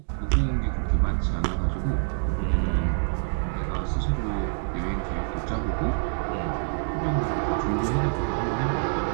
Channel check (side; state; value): left; silent; digital silence